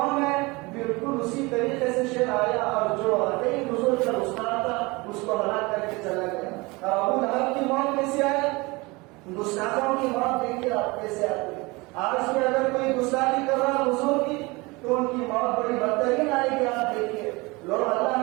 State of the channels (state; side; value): quieter; left; 24.4 dB